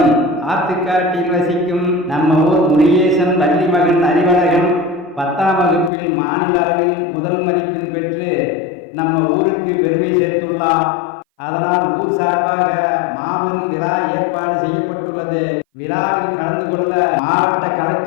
ஆத்துக்காட்டில் வசிக்கும் நம்ம ஊர் முருகேசன் வள்ளி மகன் அறிவழகன் 10ஆம் வகுப்பில் மாநில அளவில் முதல் மதிப்பெண் பெற்று நம்ம ஊருக்கு பெருமை சேர்த்துள்ளார். அதனால் ஊர் சார்பாக மாபெரும் விழா ஏற்பாடு செய்யப்பட்டுள்ளது. விழாவில் கலந்து கொள்ள மாவட்ட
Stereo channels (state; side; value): drops out; right; at 5.9 s